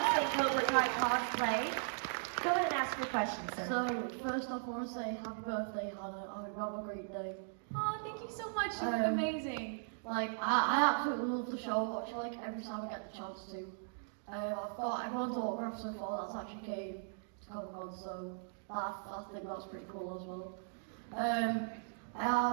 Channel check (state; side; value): silent; left; digital silence